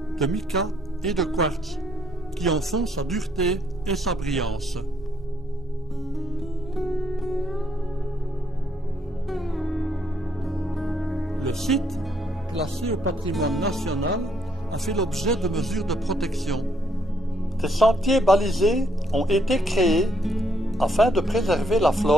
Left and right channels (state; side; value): normal; both; correlation 0.71